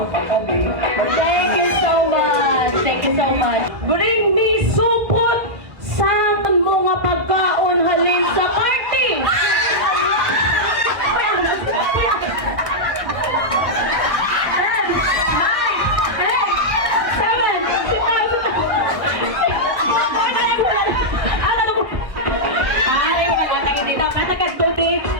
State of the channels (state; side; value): late; left; 1.7 ms